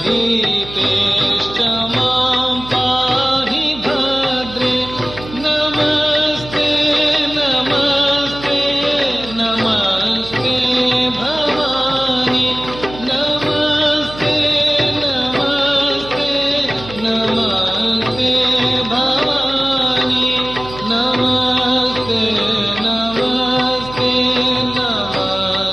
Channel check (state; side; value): noise; right; hum, 14 dB below the sound